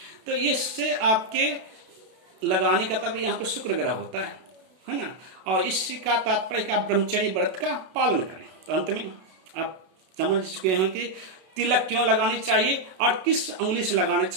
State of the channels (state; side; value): late; left; 32 ms